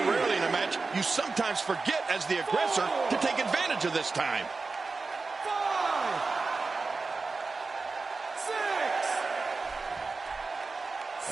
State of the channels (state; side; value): quieter; left; 4.0 dB